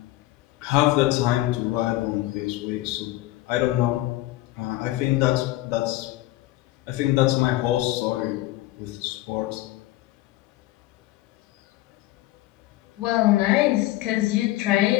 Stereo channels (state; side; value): quieter; right; 16.7 dB